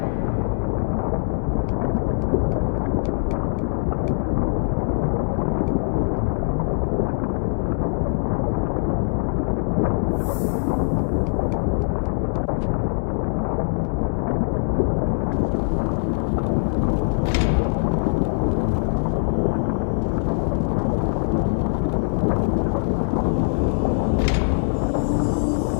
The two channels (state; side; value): silent; right; digital silence